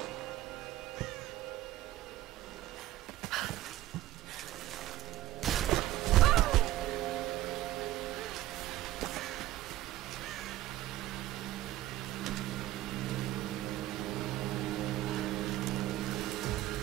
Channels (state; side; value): quieter; left; 15.3 dB